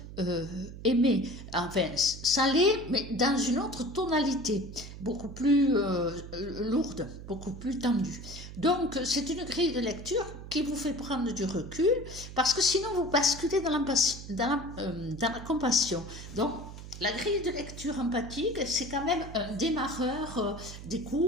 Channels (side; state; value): right; noise; hum, 12 dB below the sound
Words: euh, aimait. Enfin, ça l'est, mais dans une autre tonalité, beaucoup plus lourde, beaucoup plus tendue. Donc, c'est une grille de lecture qui vous fait prendre du recul, parce que sinon, vous basculez dans la compassion. Donc, la grille de lecture empathique, c'est quand même un démarreur